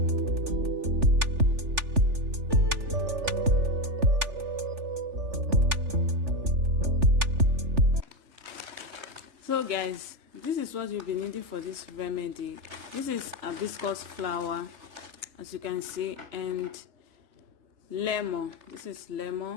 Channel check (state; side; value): late; left; 3.4 ms